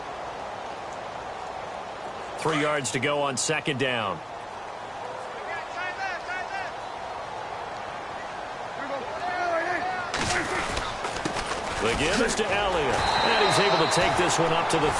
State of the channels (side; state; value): both; identical; correlation 1.00